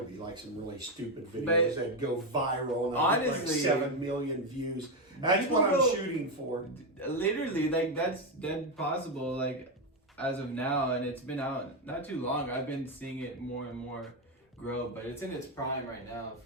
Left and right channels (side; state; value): both; normal; correlation 0.08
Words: be like some really stupid videos But that go viral and I'd get like honestly, 7 million views. That's what I'm shooting for. Literally, like that's dead possible. Like as of now, and it's been out not too long. I've been seeing it more and more grow, but it's in its prime right now